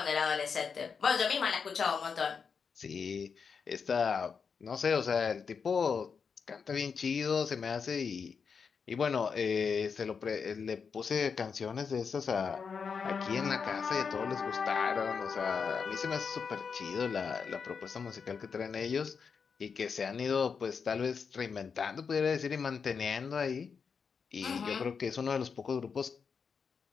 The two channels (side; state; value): right; quieter; 5.9 dB